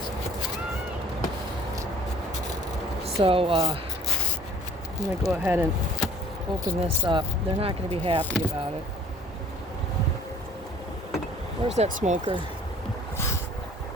So I'm going to go ahead and open this up. They're not going to be happy about it. Where's that smoker?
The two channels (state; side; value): normal; both; correlation 0.53